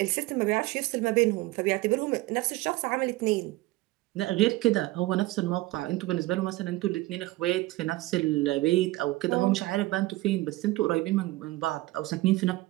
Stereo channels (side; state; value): left; quieter; 19.0 dB